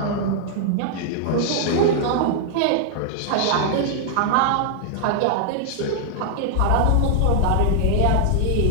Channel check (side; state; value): both; different; correlation -0.01